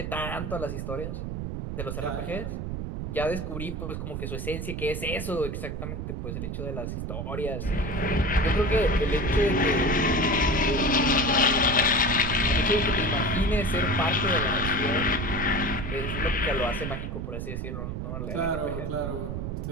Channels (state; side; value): noise; right; rumble, 4 dB below the sound